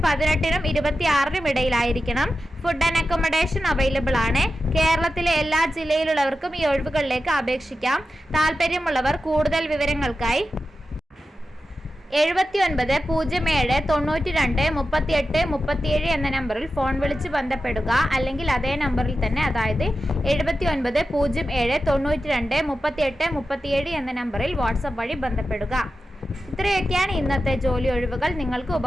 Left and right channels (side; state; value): both; normal; correlation 0.92